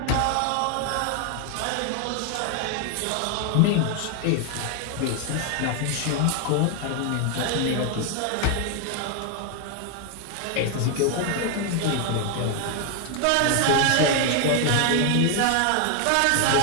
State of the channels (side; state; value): both; different; correlation 0.00